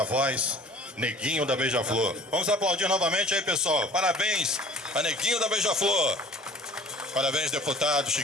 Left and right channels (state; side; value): normal; both; correlation 0.47